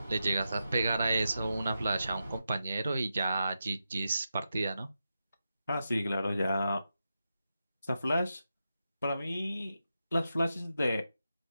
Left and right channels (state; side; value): inverted; both; correlation -0.89